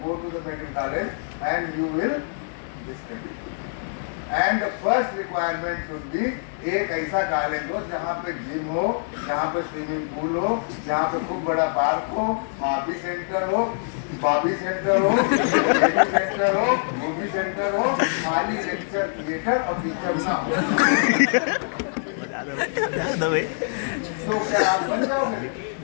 go to the medical college and you will study. And the first requirement should be एक ऐसा कॉलेज हो जहाँ पे जिम हो, जहाँ पे स्विमिंग पूल हो, जहाँ पे खूब बड़ा पार्क हो, बॉबी सेंटर हो, मूवी सेंटर हो, खाली लेक्चर थिएटर और टीचर ना हो। तो क्या आप बन जाओगे?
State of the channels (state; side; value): silent; right; digital silence